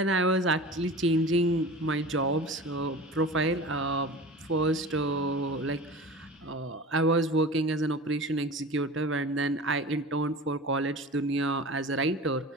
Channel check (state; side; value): normal; both; correlation 0.36